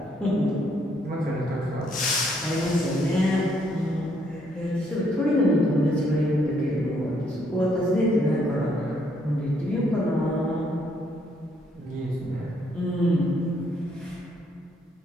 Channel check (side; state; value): both; normal; correlation 0.71